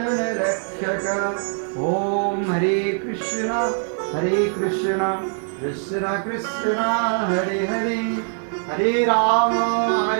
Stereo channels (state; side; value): silent; left; 56 dB below the other